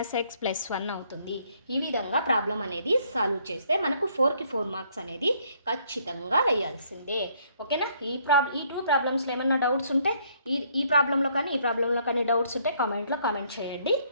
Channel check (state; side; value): inverted; both; correlation -0.67